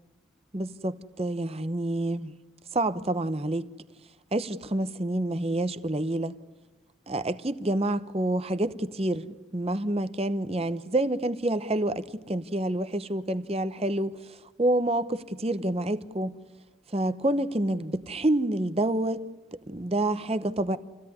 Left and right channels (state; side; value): normal; both; correlation 0.66